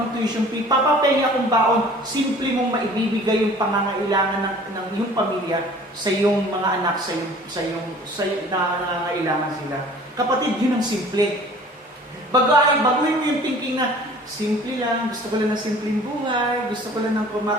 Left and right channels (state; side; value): normal; both; correlation 0.48